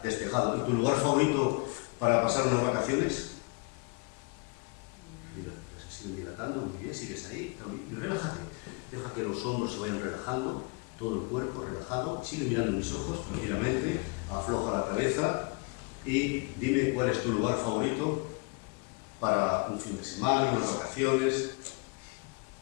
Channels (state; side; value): quieter; right; 30.3 dB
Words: Despejado. ¿Y tu lugar favorito para pasar unas vacaciones? Mira, se siguen dilatando, muy bien, sigues ahí. Y relájate. Deja que los hombros se vayan relajando, todo el cuerpo relajado. Sigue mirando mis ojos tranquilamente, afloja la cabeza y dime cuál es tu lugar favorito para un fin de semana, unas vacaciones.